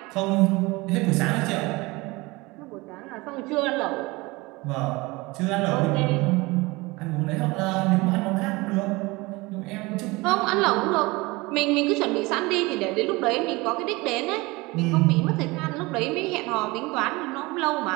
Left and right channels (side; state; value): left; quieter; 23.2 dB